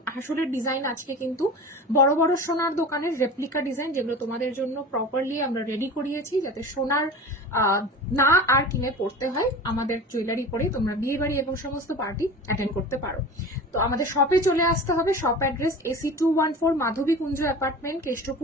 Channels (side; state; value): both; normal; correlation 0.35